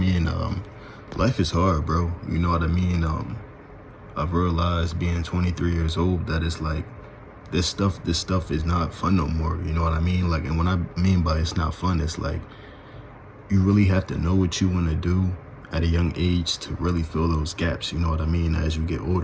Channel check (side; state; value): both; identical; correlation 1.00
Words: Life is hard, bro. You know what I mean? I've realized being 23 years old that it's like this stuff is not fun no more. You know what I mean? Like, and what I mean by it's not fun, it's like you really have to know what you want to do at a young age to really fill those gaps. You know what I mean? As you get